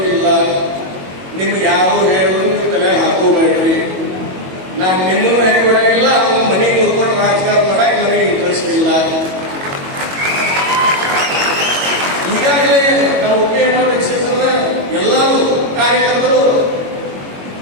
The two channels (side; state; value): left; late; 22 ms